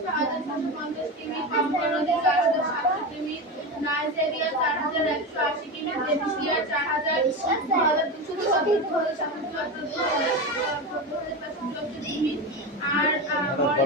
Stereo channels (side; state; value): both; normal; correlation 0.21